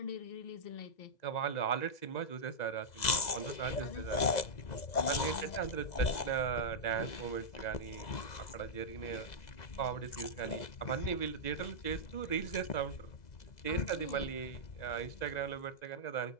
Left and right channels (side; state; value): right; late; 2.0 ms